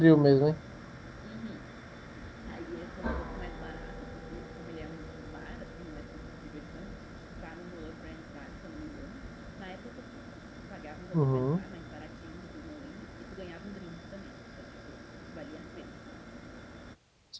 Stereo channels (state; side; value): identical; both; correlation 1.00